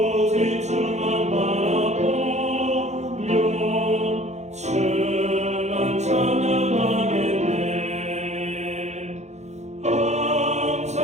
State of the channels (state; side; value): late; left; 0.33 ms